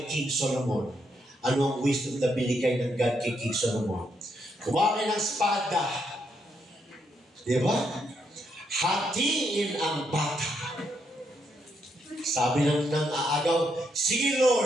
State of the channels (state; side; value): normal; both; correlation 0.78